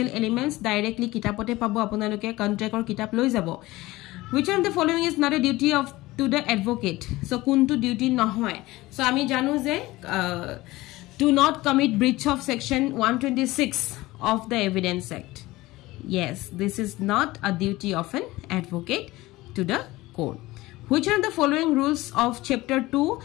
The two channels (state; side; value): quieter; right; 19.0 dB